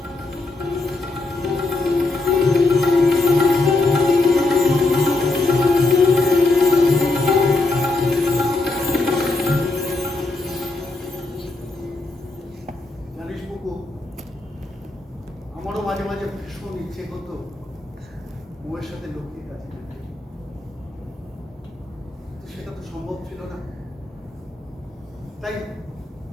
জানিস বুকু, আমারও মাঝে মাঝে ভীষণ ইচ্ছে করতো বউয়ের সাথে লক্ষ্মীর কাছে যেতে। তো সেটা তো সম্ভব ছিল না, তাই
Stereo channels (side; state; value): right; quieter; 3.2 dB